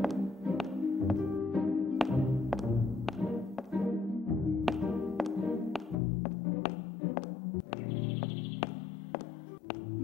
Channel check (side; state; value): right; drops out; at 6.0 s